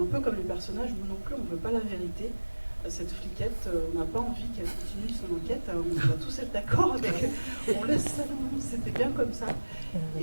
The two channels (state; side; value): inverted; both; correlation -1.00